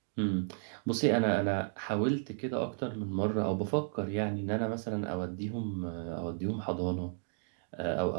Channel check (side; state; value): left; silent; digital silence